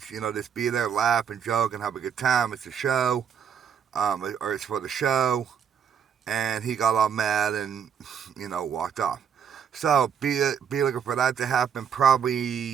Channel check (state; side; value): quieter; left; 7.8 dB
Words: just be there, laugh and joke and have a good time. It's a show, or it's for the show. And he got all mad and, walked off. So be looking for that to happen